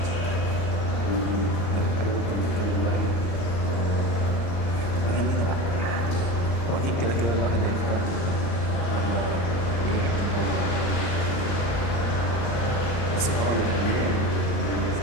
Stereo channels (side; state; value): right; late; 34 ms